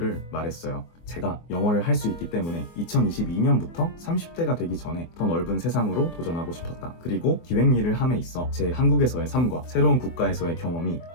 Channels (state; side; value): late; right; 24 ms